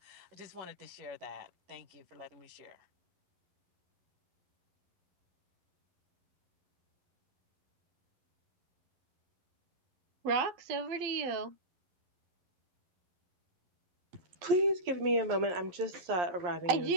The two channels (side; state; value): left; late; 11 ms